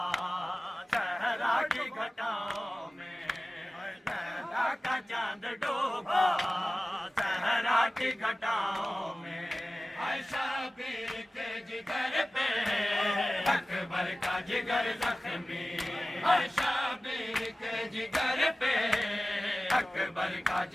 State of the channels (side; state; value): both; normal; correlation 0.97